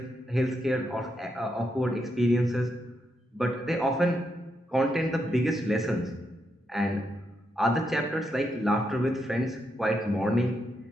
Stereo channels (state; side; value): normal; both; correlation 0.81